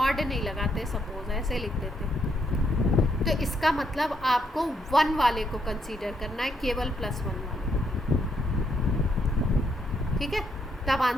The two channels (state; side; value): normal; both; correlation 0.75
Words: नहीं लगाते, सपोज ऐसे लिख देते, तो इसका मतलब आपको 1 वाले को कंसीडर करना है, केवल +1 वाले, ठीक है, तब